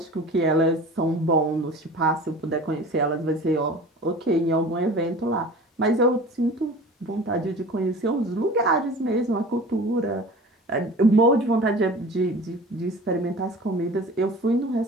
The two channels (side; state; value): both; normal; correlation 0.40